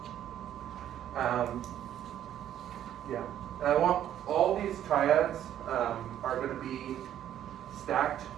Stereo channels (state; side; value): quieter; left; 11.1 dB